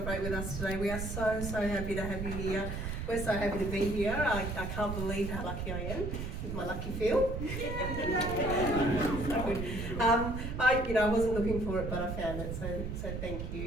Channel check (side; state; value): right; noise; rumble, 4 dB below the sound